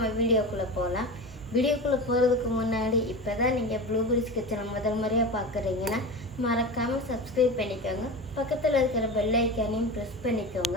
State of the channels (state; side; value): normal; both; correlation 0.28